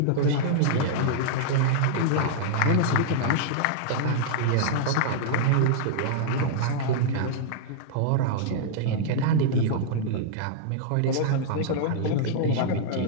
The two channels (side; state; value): both; different; correlation -0.02